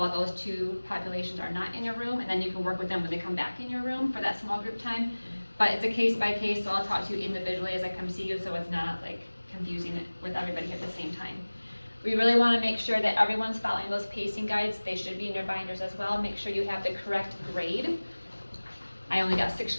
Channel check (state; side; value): inverted; both; correlation -1.00